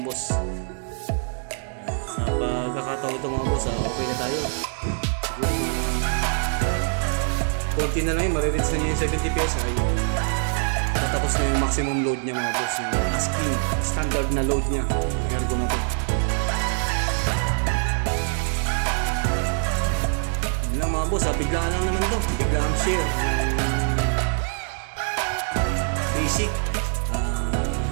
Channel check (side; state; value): left; silent; 62 dB below the other